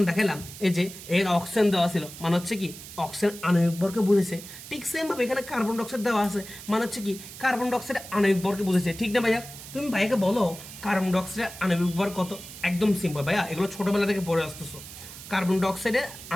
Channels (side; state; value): right; noise; hiss, 14 dB below the sound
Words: দেখালাম এই যে এর অক্সিজেন দেওয়া ছিল, মানে হচ্ছে কি অক্সিজেন আণবিক ভরকে বুঝেছে। ঠিক সেম ভাবে এখানে কার্বন ডাইঅক্সাইড দেওয়া আছে, মানে হচ্ছে কি কার্বন ডাইঅক্সাইড আণবিক ভরকে বুঝেছে। ঠিক না ভাইয়া? তুমি ভাইকে বলো কার্বন ডাইঅক্সাইডের আণবিক ভর কত? একদম সিম্পল ভাইয়া, এগুলো ছোটবেলা থেকে পড়ে আসতেছো। কার্বন ডাইঅক্সাইডের